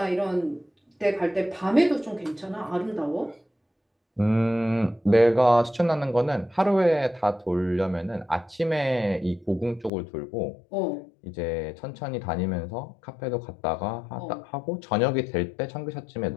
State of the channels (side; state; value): right; drops out; at 9.9 s